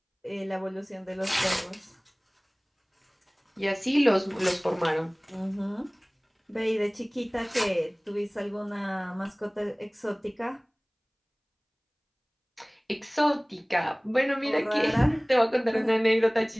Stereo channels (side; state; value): both; identical; correlation 1.00